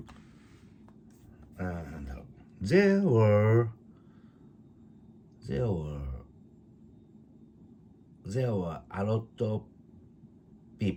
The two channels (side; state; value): both; identical; correlation 1.00